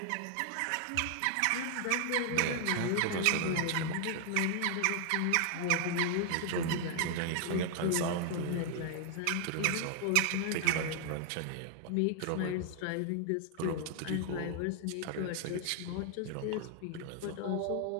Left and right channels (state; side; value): different; both; correlation 0.00